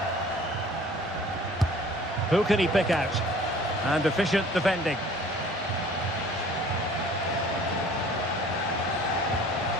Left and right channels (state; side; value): normal; both; correlation 0.50